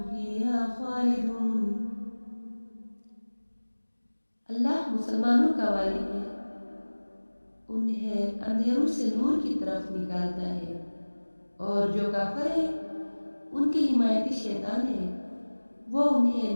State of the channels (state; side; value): inverted; both; correlation -1.00